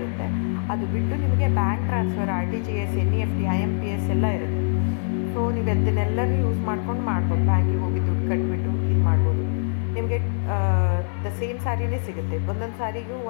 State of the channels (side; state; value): right; silent; 63 dB below the other